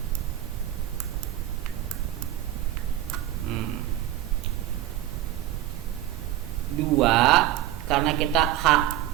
Dua, karena kita h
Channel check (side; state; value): left; quieter; 13.5 dB